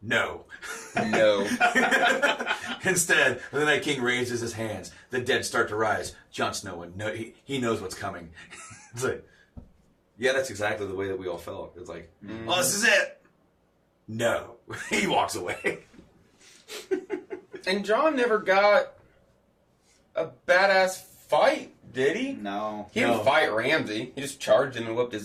No. no. Instead, the Night King raises his hands. The dead start to rise. Jon Snow, he knows what's coming. It's like, yeah, that's exactly the way that we all felt. It's like, oh, this is it. No. He walks away. And John never got a badass fight, did he? No. He didn't fight Ramsay. He just charged him and whooped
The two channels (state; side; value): identical; both; correlation 1.00